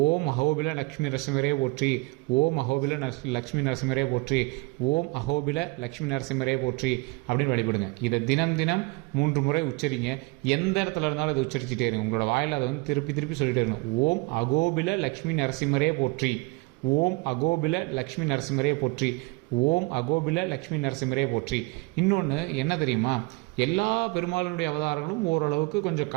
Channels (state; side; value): quieter; left; 26.5 dB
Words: ஓம் அஹோபில லக்ஷ்மி நரசிம்மரே போற்றி, ஓம் அஹோபில லக்ஷ்மி நரசிம்மரே போற்றி, ஓம் அஹோபில லக்ஷ்மி நரசிம்மரே போற்றி அப்படின்னு வழிபடுங்க. இதை தினம் தினம் 3 முறை உச்சரிங்க. எந்த இடத்துல இருந்தாலும் இதை உச்சரிச்சுட்டே இருங்க. உங்களோட வாயில் அதை வந்து திருப்பி திருப்பி சொல்லிட்டே இருக்கணும். ஓம் அகோபில லக்ஷ்மி நரசிம்மரே போற்றி, ஓம் அகோபில லக்ஷ்மி நரசிம்மரே போற்றி, ஓம் அகோபில லக்ஷ்மி நரசிம்மரே போற்றி. இன்னொன்று என்ன தெரியுமா? எல்லா பெருமாளினுடைய அவதாரங்களும் ஓரளவுக்கு கொஞ்சம்